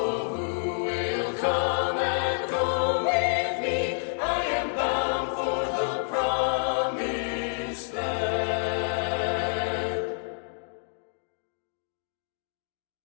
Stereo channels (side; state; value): right; silent; digital silence